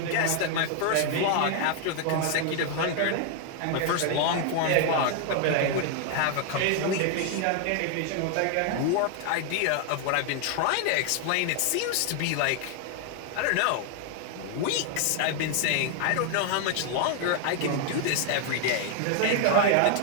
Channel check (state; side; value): different; both; correlation 0.00